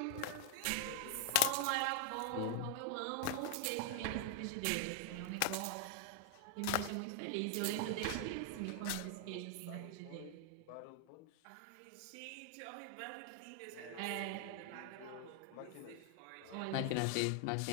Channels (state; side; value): different; both; correlation -0.01